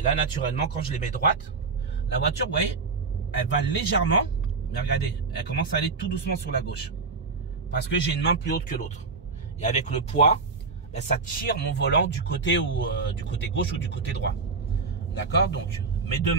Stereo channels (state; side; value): quieter; left; 4.5 dB